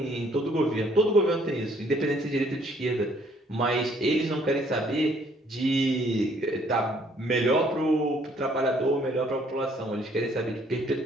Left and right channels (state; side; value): normal; both; correlation 0.63